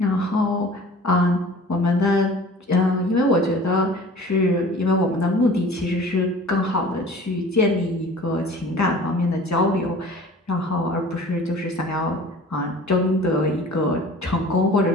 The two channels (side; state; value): both; normal; correlation 0.45